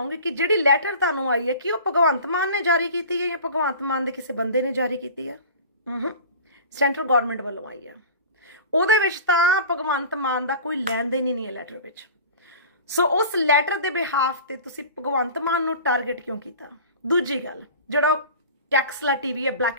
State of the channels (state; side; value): inverted; both; correlation -0.39